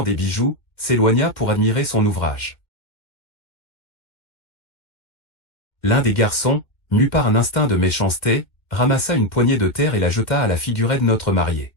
des bijoux, s'éloigna pour admirer son ouvrage. L'un des garçons, mu par un instinct de méchanceté, ramassa une poignée de terre et la jeta à la figurette de notre mariée.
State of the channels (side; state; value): right; late; 2.1 ms